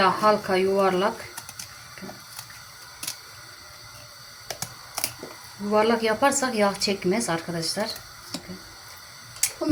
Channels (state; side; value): identical; both; correlation 1.00